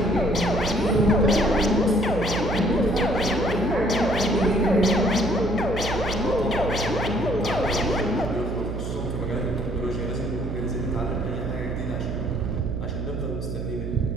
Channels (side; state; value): right; noise; hum, 5 dB below the sound